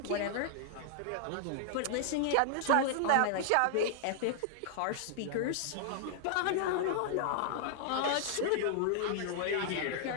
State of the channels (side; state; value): both; different; correlation 0.00